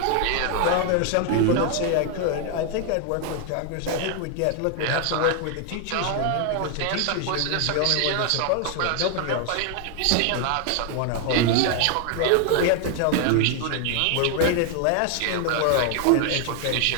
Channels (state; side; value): different; both; correlation 0.00